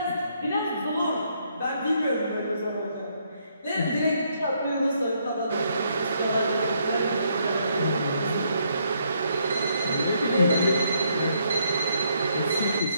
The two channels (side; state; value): both; inverted; correlation -0.72